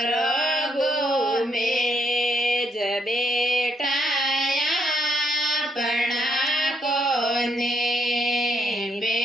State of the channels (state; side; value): normal; both; correlation 0.73